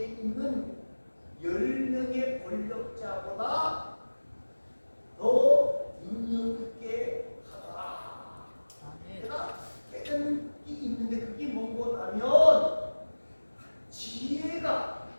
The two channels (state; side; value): inverted; both; correlation -1.00